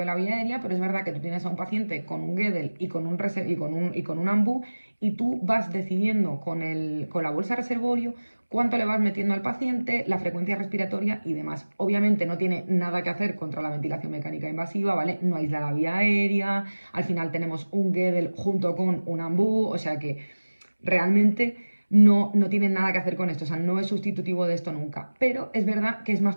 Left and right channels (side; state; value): both; inverted; correlation -1.00